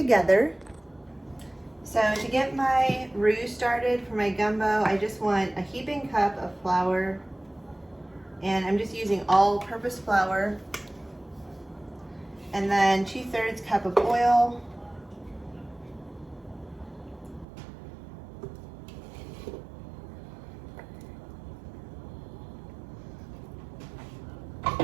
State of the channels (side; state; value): left; drops out; at 17.4 s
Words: So to get my roux started for my gumbo, I just want a heaping cup of flour, and I'm just using all-purpose flour, and then 2/3 cup of oil,